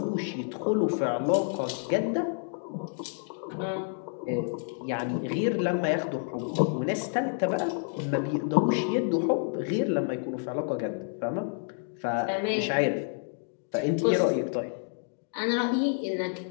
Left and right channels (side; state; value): right; silent; 59 dB below the other